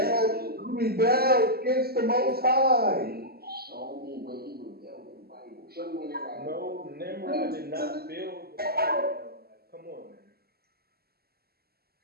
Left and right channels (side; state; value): left; late; 0.45 ms